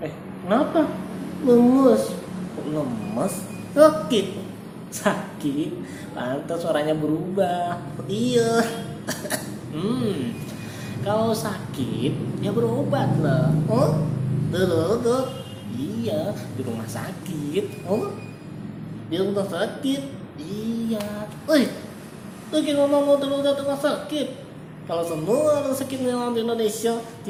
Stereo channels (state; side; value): identical; both; correlation 1.00